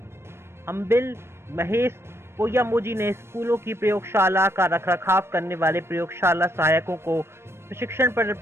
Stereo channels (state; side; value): late; left; 0.12 ms